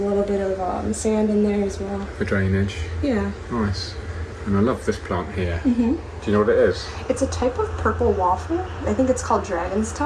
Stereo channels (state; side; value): identical; both; correlation 1.00